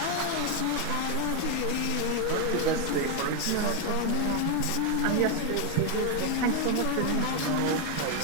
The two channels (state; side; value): different; both; correlation 0.01